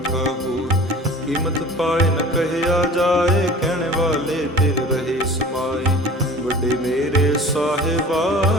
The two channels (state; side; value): normal; both; correlation 0.42